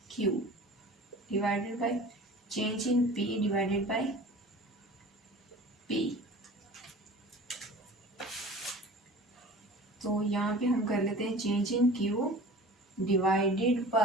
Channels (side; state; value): both; normal; correlation 0.41